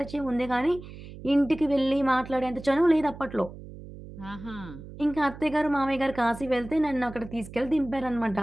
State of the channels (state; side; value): noise; right; hum, 14 dB below the sound